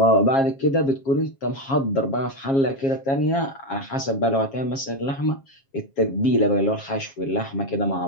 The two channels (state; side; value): late; right; 7.4 ms